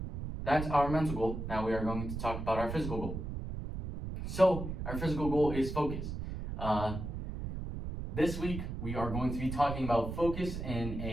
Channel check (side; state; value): right; noise; rumble, 5 dB below the sound